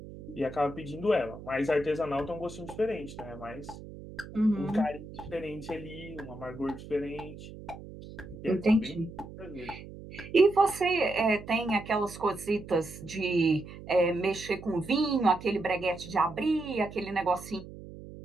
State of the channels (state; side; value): noise; right; hum, 14 dB below the sound